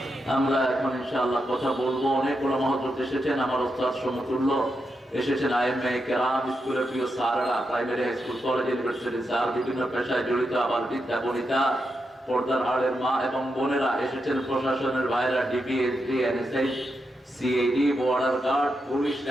আমরা এখন ইনশাআল্লাহ কথা বলবো। অনেক ওলামা হযরত এসেছেন, আমার ওস্তাদ সমতুল্য এসেছেন, আইএমএ কেরাম, স্কুলের প্রিয় স্যাররা, primary high school, college, university sir, বিভিন্ন পেশায় জড়িত, আবার বিদ্যা বনিতা, পর্দার আড়ের মা এবং বোনেরা এসেছেন, প্রশাসনের ভাইরা, DB, SD, NSI, CID, border guard, police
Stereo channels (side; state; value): both; normal; correlation 0.85